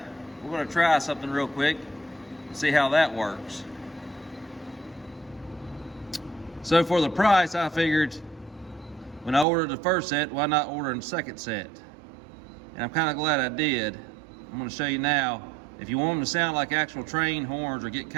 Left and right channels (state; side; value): drops out; left; at 9.5 s